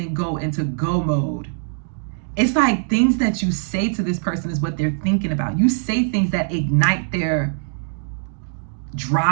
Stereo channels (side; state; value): left; silent; digital silence